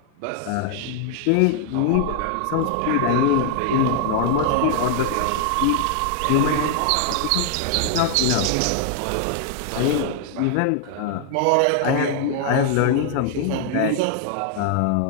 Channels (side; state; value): both; different; correlation 0.00